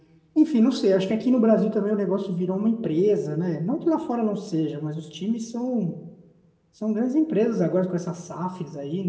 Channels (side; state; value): both; identical; correlation 1.00